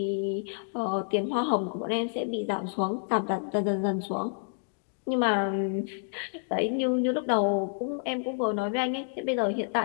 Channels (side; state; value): right; silent; digital silence